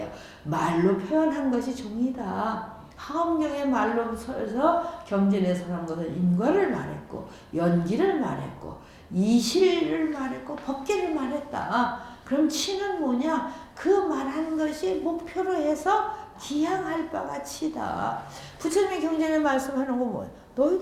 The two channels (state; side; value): identical; both; correlation 1.00